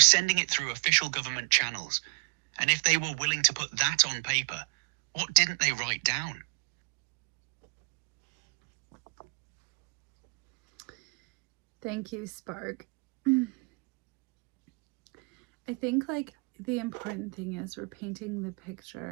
sending it through official government channels. And if they were willing to put that on paper, what didn't they write down? Thank you, Spark. I think like the important thing is we're painting the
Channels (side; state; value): left; quieter; 31.6 dB